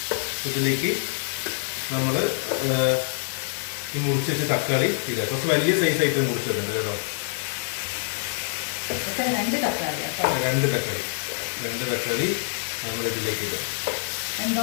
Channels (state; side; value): silent; right; digital silence